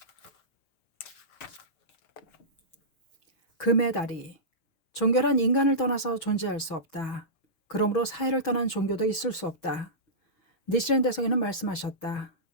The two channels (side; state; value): right; late; 6.2 ms